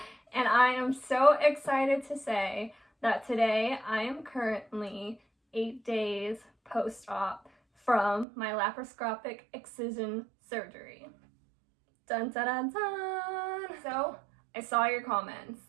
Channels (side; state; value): left; drops out; at 8.2 s